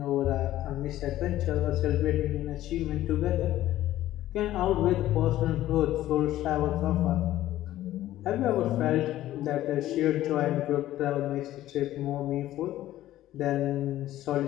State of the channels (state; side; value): quieter; right; 14.2 dB